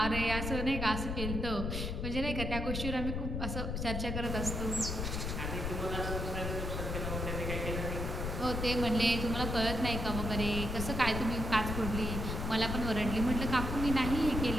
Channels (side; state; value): left; noise; rumble, 2 dB below the sound